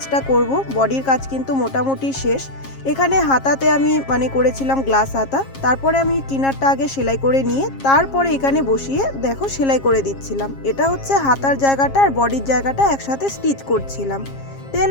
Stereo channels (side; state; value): right; late; 7.4 ms